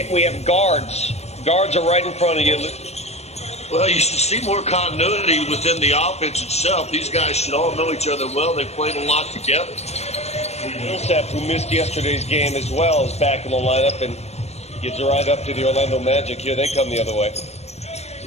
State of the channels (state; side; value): late; right; 0.31 ms